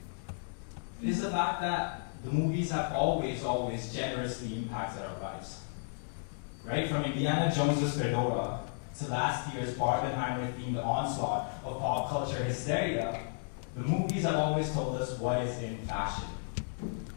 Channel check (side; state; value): right; silent; digital silence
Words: it is the fact that the movies have always generously impacted our lives. Right? From Indiana Jones's Fedora to last year's Barbenheimer-themed onslaught of pop culture hysteria, the movies have always told us what is in fashion.